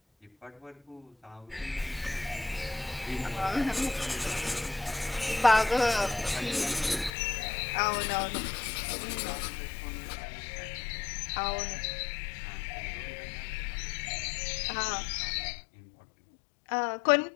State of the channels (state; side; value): drops out; right; at 7.1 s